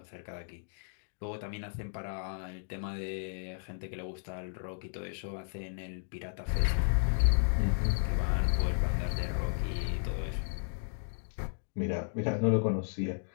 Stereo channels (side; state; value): right; silent; digital silence